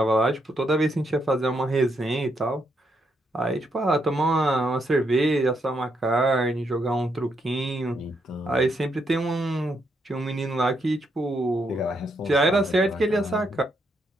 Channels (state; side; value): normal; both; correlation 0.78